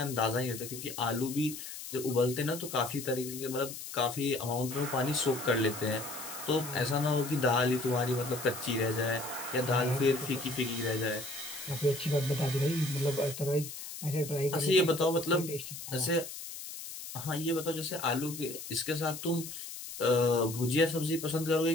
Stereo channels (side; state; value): left; noise; hiss, 10 dB below the sound